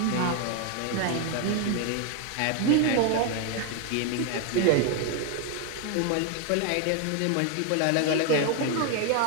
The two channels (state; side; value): different; both; correlation 0.01